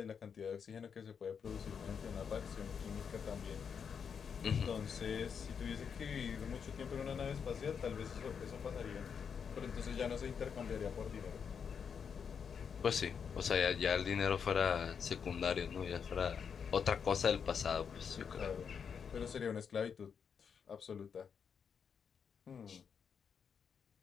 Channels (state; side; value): quieter; right; 6.8 dB